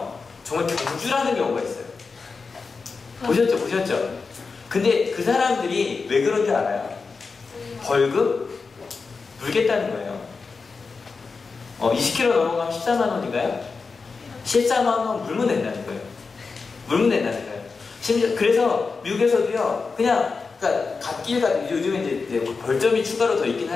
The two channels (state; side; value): quieter; right; 4.6 dB